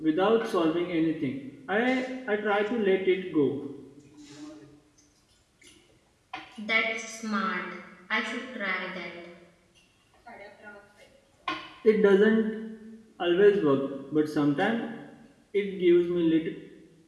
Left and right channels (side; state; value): both; identical; correlation 1.00